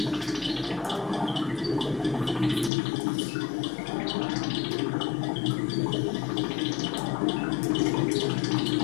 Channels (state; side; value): drops out; right; at 2.7 s